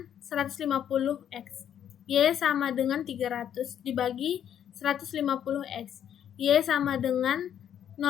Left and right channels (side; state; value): right; quieter; 9.7 dB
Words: 150X. Y sama dengan 300 dibagi 150X. Y sama dengan